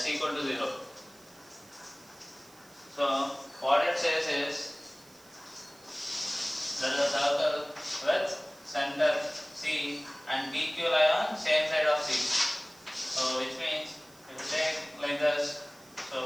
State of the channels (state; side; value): noise; right; hiss, 25 dB below the sound